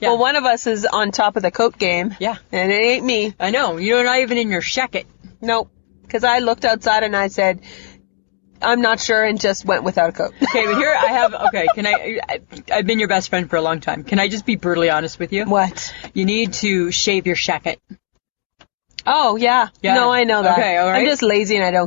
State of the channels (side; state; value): right; silent; 68 dB below the other